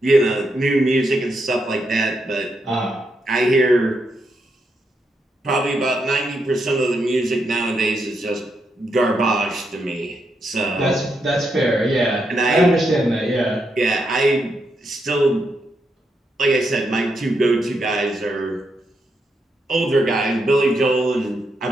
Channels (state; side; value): normal; both; correlation 0.81